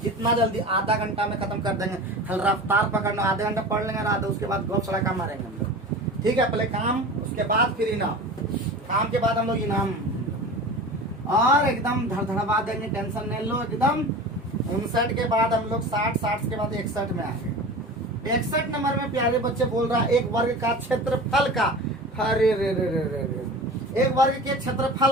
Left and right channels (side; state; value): both; normal; correlation 0.34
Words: जितना जल्दी आधा घंटा में खत्म कर देंगे, खाली रफ्तार पकड़ना, आधे घंटा पढ़ लेंगे, आधा उसके बाद गप सड़का मारेंगे हम लोग। ठीक है, पहले काम, उसके बाद फिर इनाम, काम के बाद हम लोग इनाम, और एकदम धड़धड़वा देंगे, टेंशन नहीं लो एकदम। 59 के बाद हम लोग 60, 60 के बाद 61 में आएंगे। 61 नंबर में प्यारे बच्चे बोल रहा है एक वर्ग का क्षेत्रफल का, अरे रे रे रे रे रे, एक वर्ग के